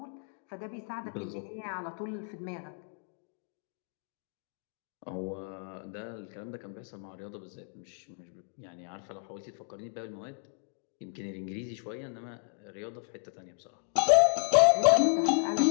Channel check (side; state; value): right; silent; 56 dB below the other